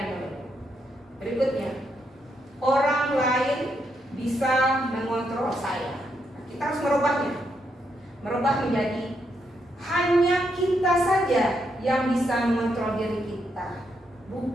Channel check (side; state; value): both; normal; correlation 0.79